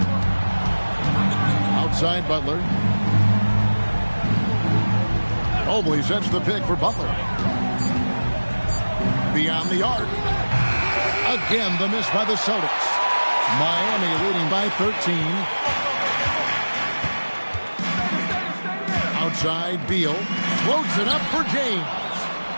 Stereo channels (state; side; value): inverted; both; correlation -1.00